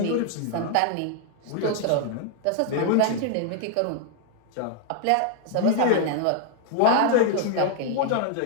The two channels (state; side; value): different; both; correlation 0.00